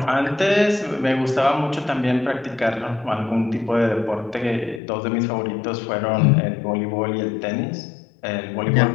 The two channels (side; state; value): right; drops out; at 4.8 s